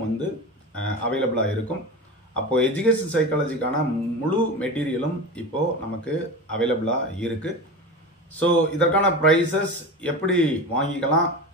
அவைலபிளாக இருக்கும். அப்போ எஜுகேஷன் சைக்காலஜிக்கான முழு மெட்டீரியலும் இப்போ நமக்கு அவைலபிளாக இருக்கு. ஸோ இதற்கான ப்ரைஸஸ் எப்படி வாங்கிக்கலாம்,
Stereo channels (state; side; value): normal; both; correlation 0.27